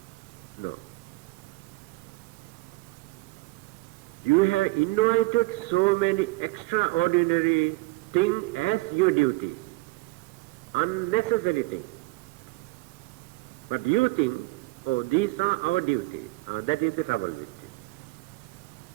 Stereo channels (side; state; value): left; quieter; 21.4 dB